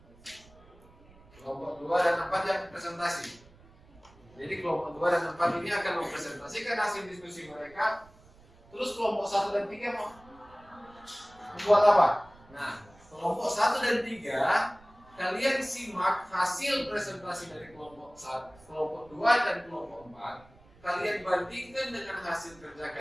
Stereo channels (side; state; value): right; noise; rumble, 26 dB below the sound